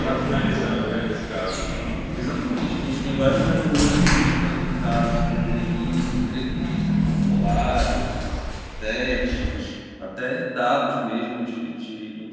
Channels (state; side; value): identical; both; correlation 1.00